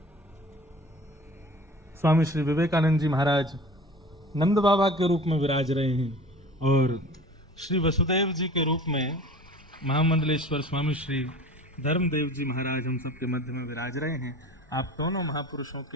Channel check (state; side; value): normal; both; correlation 0.41